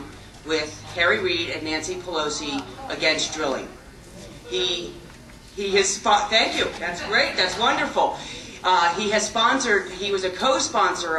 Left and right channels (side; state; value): both; identical; correlation 1.00